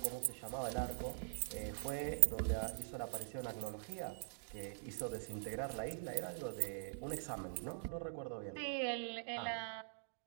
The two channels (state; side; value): silent; left; digital silence